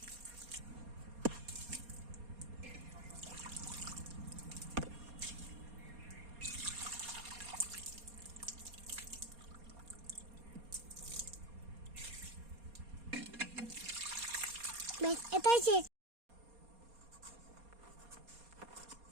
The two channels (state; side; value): late; left; 4.2 ms